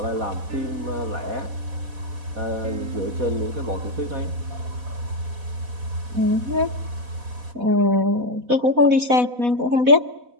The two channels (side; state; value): left; late; 4.1 ms